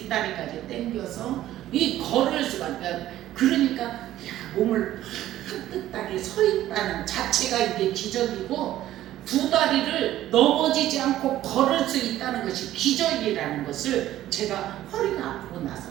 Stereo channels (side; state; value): left; quieter; 13.6 dB